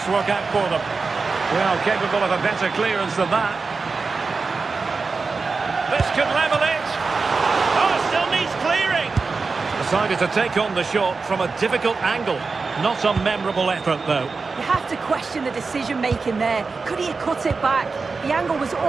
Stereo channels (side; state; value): left; quieter; 4.4 dB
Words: work out for them? Well, capable of a better clearance than that. This could level it. Oh, still needs clearing. Decided to take on the shot from a difficult angle. Not a memorable effort, though. You have to question the decision-making there. Could he have cut it back? The angle was